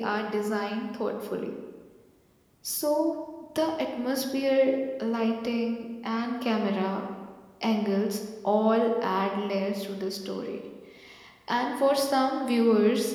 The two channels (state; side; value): identical; both; correlation 1.00